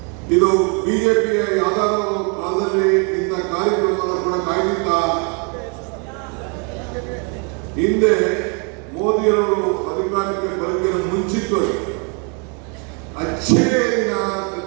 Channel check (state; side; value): quieter; left; 36.4 dB